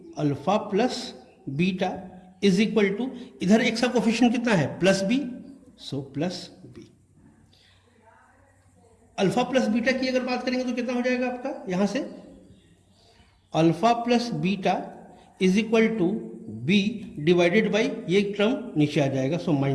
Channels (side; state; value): both; identical; correlation 1.00